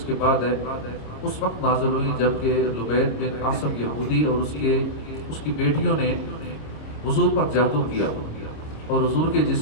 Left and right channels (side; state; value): right; late; 26 ms